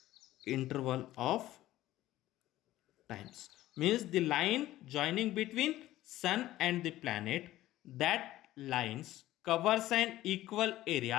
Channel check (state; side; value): quieter; right; 15.2 dB